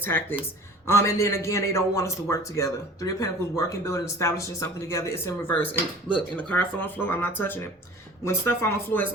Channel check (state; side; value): normal; both; correlation 0.43